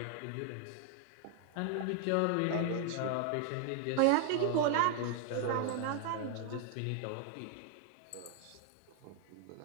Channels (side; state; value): both; different; correlation 0.00